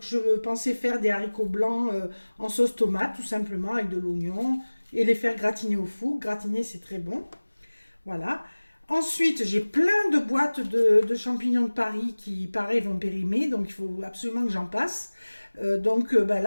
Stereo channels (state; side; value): inverted; both; correlation -1.00